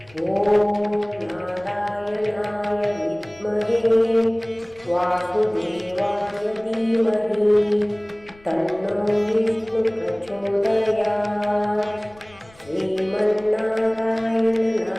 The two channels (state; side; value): noise; left; rumble, 26 dB below the sound